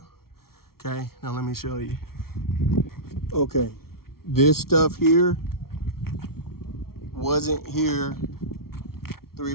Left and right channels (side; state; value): right; late; 0.94 ms